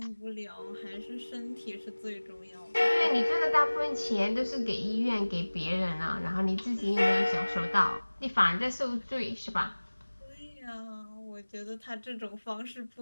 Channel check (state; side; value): inverted; both; correlation -1.00